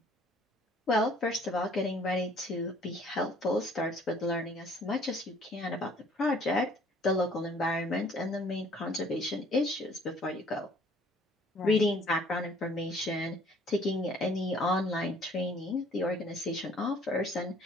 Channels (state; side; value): normal; both; correlation 0.57